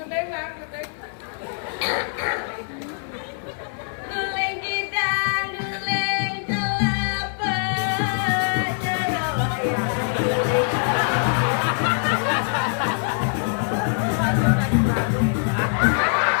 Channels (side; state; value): right; silent; 61 dB below the other